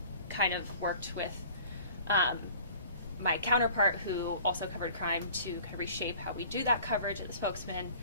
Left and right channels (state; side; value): inverted; both; correlation -0.47